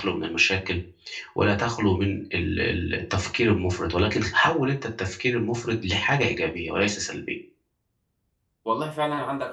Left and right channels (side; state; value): both; identical; correlation 1.00